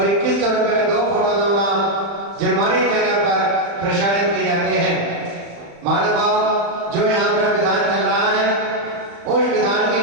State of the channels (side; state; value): left; late; 35 ms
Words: 2100 रुपए में 2 फोटो 2 नाम जिनवानी चैनल पर प्रसारित किए जाते हैं। महानुभाव जो यहाँ पर विधान